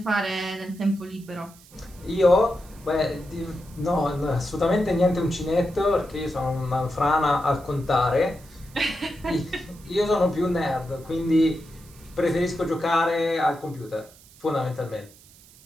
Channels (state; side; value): noise; right; hiss, 24 dB below the sound